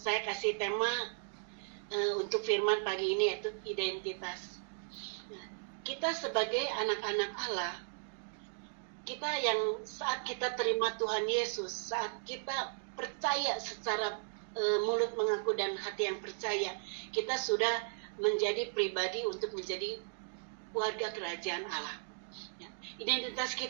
kasih tema untuk firman pagi ini yaitu identitas. Kita sebagai anak-anak Allah, kita yang saat kita terima Tuhan Yesus, saat kita percaya secara mulut mengaku dan hati yang percaya, kita sudah menjadi pribadi untuk menjadi warga kerajaan Allah. Ya. Identitas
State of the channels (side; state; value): left; silent; digital silence